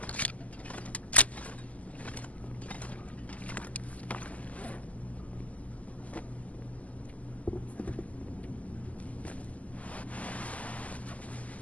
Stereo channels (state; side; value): late; right; 0.071 ms